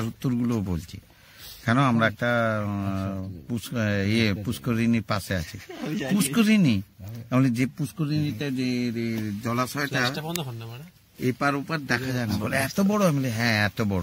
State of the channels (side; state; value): both; identical; correlation 1.00